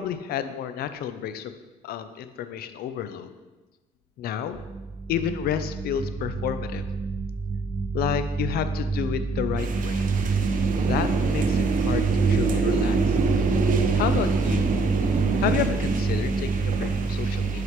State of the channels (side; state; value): both; normal; correlation 0.63